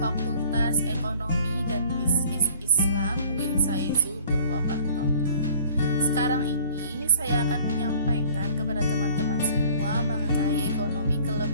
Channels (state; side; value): inverted; both; correlation -0.51